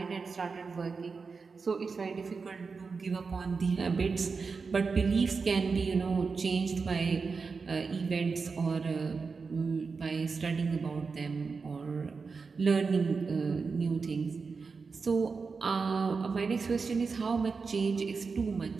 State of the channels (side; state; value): left; quieter; 4.8 dB